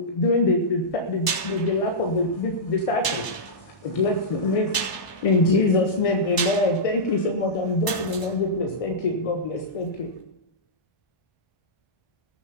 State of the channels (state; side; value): late; right; 1.0 ms